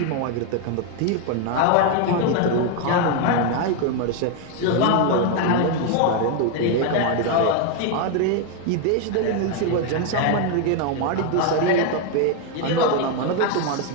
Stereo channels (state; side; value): different; both; correlation 0.01